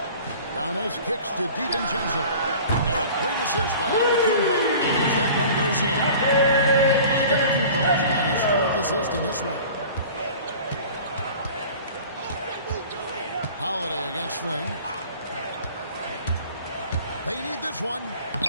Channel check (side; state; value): both; inverted; correlation -0.43